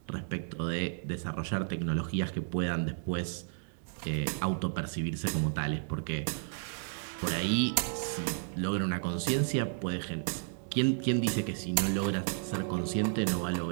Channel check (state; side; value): silent; left; digital silence